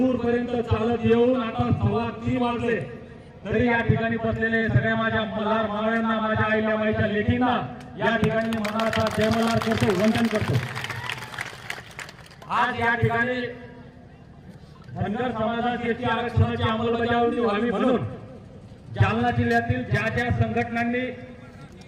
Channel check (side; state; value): both; identical; correlation 1.00